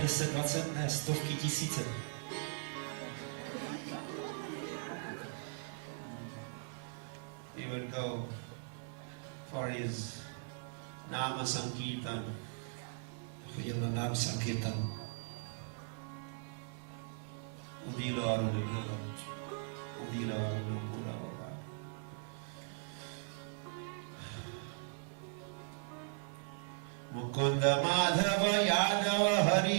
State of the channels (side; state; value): left; silent; 52 dB below the other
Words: 10, 20, ne, stovky, tisíce. He would go for his Nama Sankirtan. Chodil na Nama Sankirtan. Udilo Arunapura. Udilo Arunapura. Mukunda Madhava Yadava